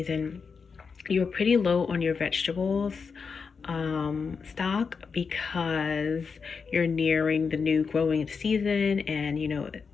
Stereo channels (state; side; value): quieter; right; 5.5 dB